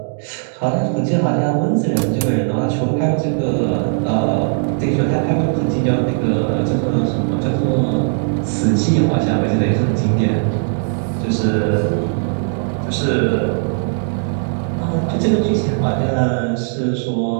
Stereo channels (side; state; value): left; silent; 67 dB below the other